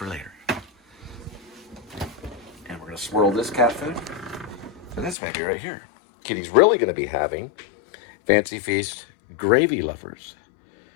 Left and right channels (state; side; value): drops out; right; at 5.2 s